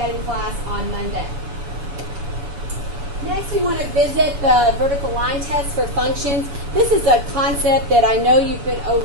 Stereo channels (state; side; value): late; left; 7.0 ms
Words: in class on Monday. Next, we want to visit the vertical line test for functions. This is a concept that I know you've been